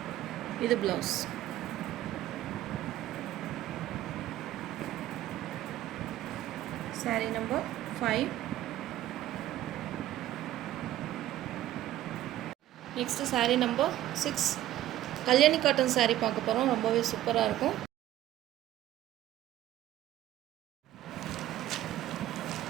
இது blouse. saree number 5. Next saree number 6. Kalyani cotton saree பார்க்க போகிறோம். ரொம்பவே சூப்பராக இருக்கும்.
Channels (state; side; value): quieter; left; 13.9 dB